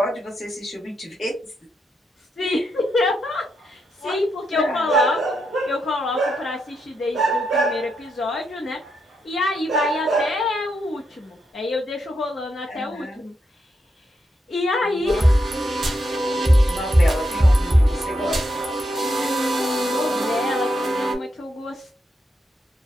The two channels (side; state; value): both; normal; correlation 0.82